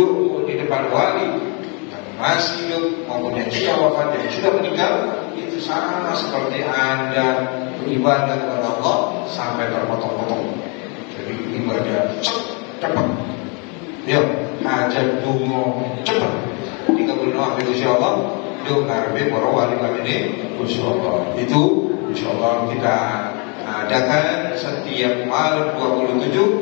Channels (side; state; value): right; quieter; 34.1 dB